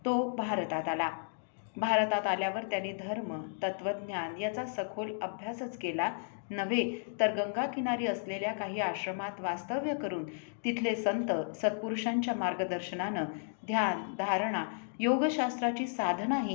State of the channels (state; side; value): silent; right; digital silence